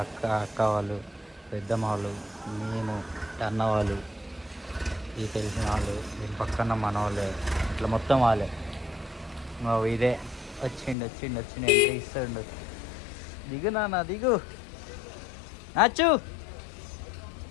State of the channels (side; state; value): right; drops out; at 11.0 s